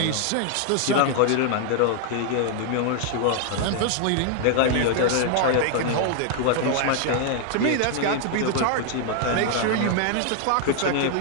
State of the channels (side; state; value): both; different; correlation 0.00